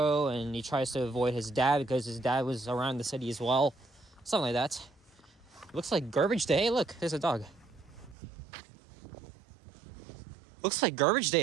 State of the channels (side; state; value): left; drops out; at 8.2 s